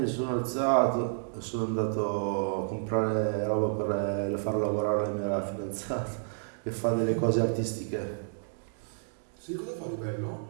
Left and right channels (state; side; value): silent; left; digital silence